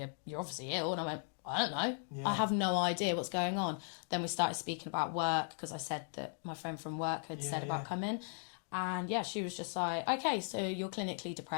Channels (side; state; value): right; silent; 53 dB below the other